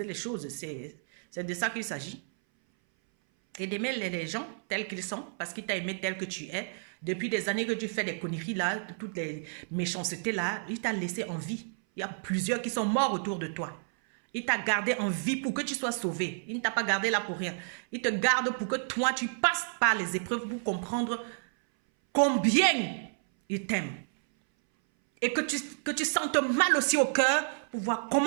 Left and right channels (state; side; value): silent; left; 57 dB below the other